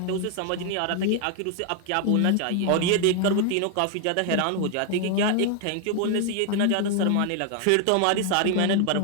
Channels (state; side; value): different; both; correlation 0.00